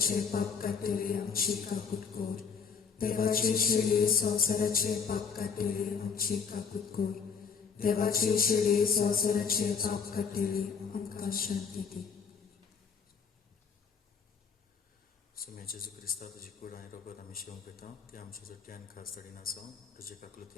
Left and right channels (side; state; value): right; quieter; 6.1 dB